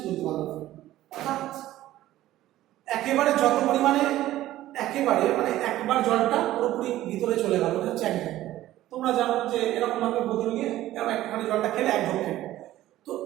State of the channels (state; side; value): quieter; left; 14.7 dB